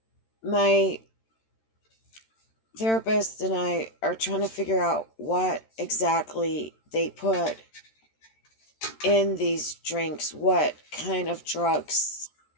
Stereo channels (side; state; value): right; late; 13 ms